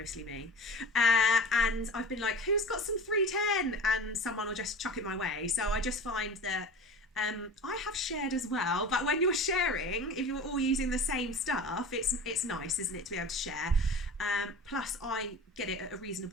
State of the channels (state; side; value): normal; both; correlation 0.37